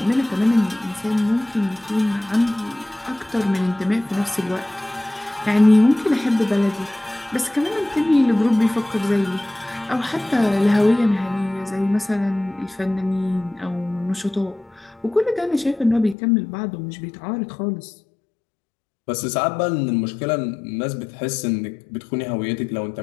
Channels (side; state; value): right; drops out; at 16.2 s